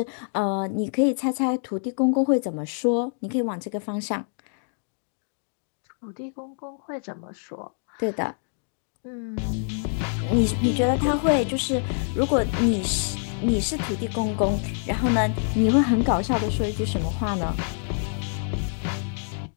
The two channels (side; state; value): right; silent; 61 dB below the other